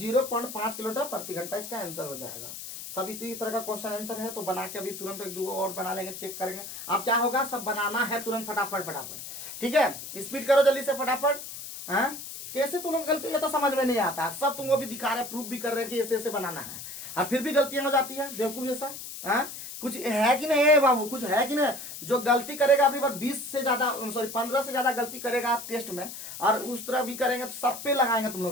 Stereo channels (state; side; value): noise; left; hiss, 10 dB below the sound